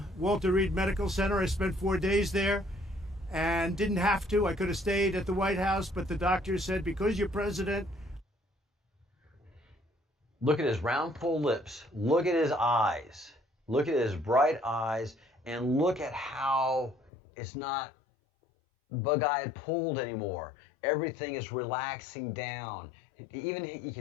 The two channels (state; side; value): drops out; right; at 17.1 s